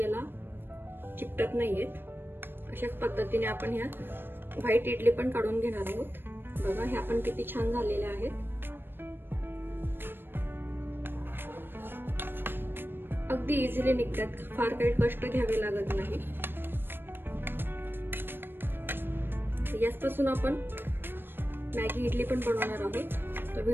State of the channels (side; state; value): left; late; 0.10 ms